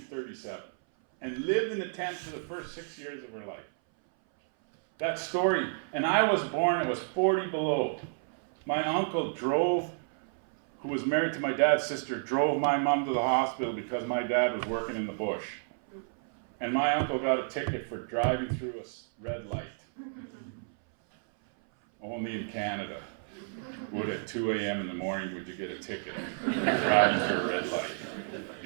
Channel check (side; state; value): left; silent; 57 dB below the other